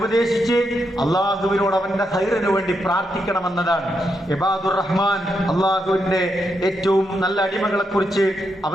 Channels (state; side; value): normal; both; correlation 0.82